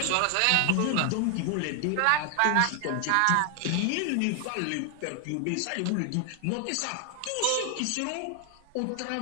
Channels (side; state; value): both; different; correlation 0.00